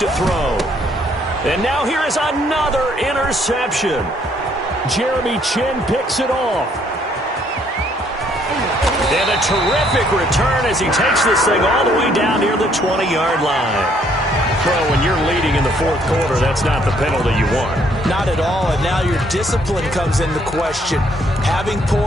throw. And now here is another interception. Jeremy Chin picks it off. And a terrific return as he takes this thing all the way down near the 20-yard line. Well, when you're leading in the fourth quarter, that's not the penalty you want. Not at all, and now your discipline comes into question. Having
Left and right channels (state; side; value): normal; both; correlation 0.66